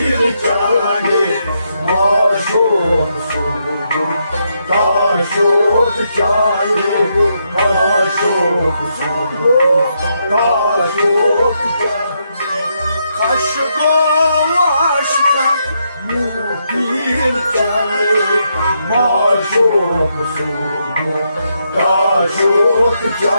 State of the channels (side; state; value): both; inverted; correlation -0.79